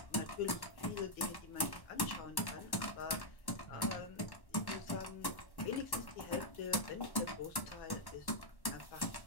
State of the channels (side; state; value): right; late; 1.1 ms